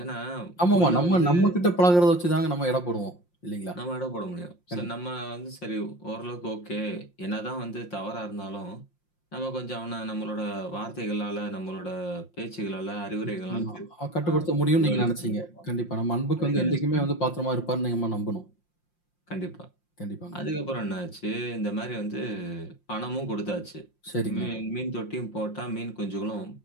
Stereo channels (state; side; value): late; right; 5.7 ms